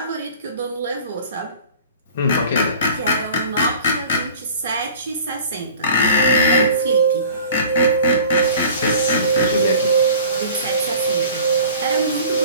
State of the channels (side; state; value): both; inverted; correlation -0.45